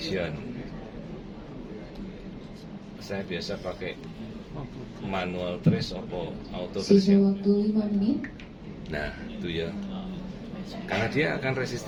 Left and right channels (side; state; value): both; identical; correlation 1.00